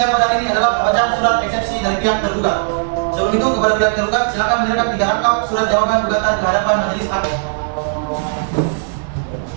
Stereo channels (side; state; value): left; silent; digital silence